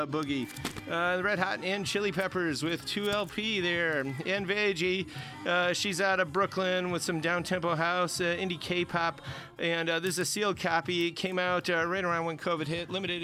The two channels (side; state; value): both; identical; correlation 1.00